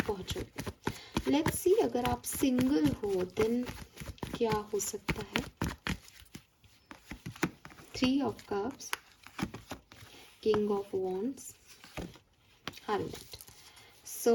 पहुँचोगे। लेट्स सी, अगर आप सिंगल हो देन क्या हो सकता है? 3 of cups, king of wands, hermit.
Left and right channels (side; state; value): both; identical; correlation 1.00